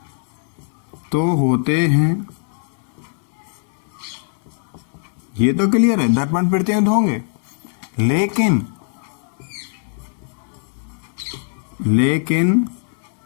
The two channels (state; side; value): silent; right; 63 dB below the other